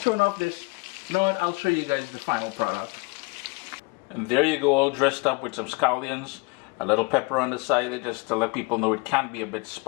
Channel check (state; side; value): quieter; right; 28.3 dB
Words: off this. You know what, I'll show you guys the final product. And there you go, all dressed up with some scallions, a little pepper on the side just to let people know it can be a bit